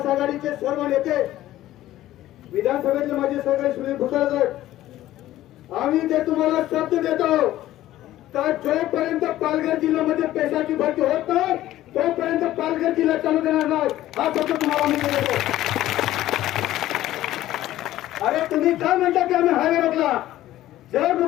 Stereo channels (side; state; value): right; quieter; 14.4 dB